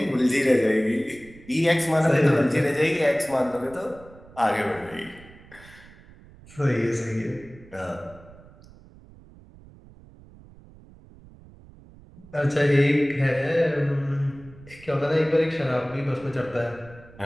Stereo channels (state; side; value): noise; right; rumble, 22 dB below the sound